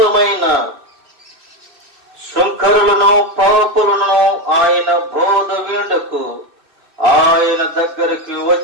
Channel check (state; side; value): late; left; 2.6 ms